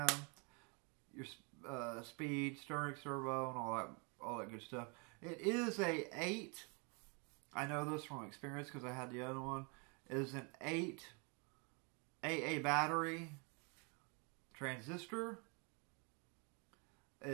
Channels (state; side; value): quieter; left; 33.6 dB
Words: your speed, steering servo, and all that good stuff. It is a 8. I know this from experience because I had the other one. It is an 8 AA battery transistor.